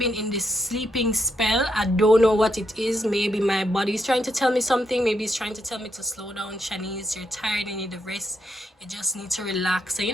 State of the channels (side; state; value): both; normal; correlation 0.80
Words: in this sleeping spell. I don't know what it is. Maybe my body is trying to tell me something. Maybe it's trying to tell me to slow down. Shanice, you're tired, you need a rest, you just need to relax. So, you